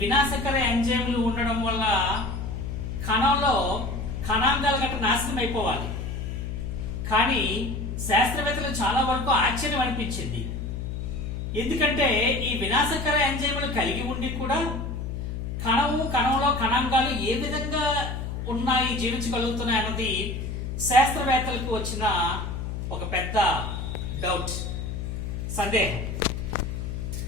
వినాశకర ఎంజైమ్లు ఉండడం వల్ల కణంలో కణాంగాలు గట్రా నాశనం అయిపోవాలి. కానీ శాస్త్రవేత్తలు చాలా వరకు ఆశ్చర్యం అనిపించింది. ఎందుకంటే ఈ వినాశకర ఎంజైమ్లు కలిగి ఉండి కూడా కణంలో కణాంగాలు ఏ విధంగా ఉన్నాయి, జీవించగలుగుతున్నాయి అన్నది శాస్త్రవేత్తలకు వచ్చిన ఒక పెద్ద డౌట్, సందేహం.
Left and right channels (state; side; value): noise; left; hum, 5 dB below the sound